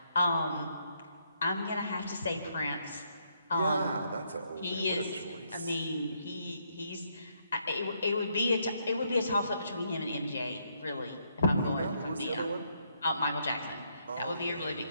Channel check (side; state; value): both; inverted; correlation -0.74